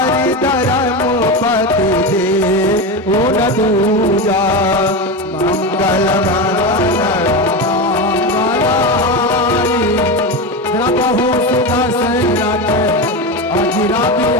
धर्म पति दे उन दूजा मंगल प्रभु सुदशरथ अजिरा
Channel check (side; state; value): both; normal; correlation 0.18